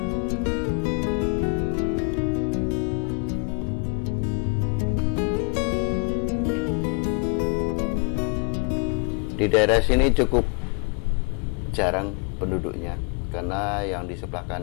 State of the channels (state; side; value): quieter; right; 35.8 dB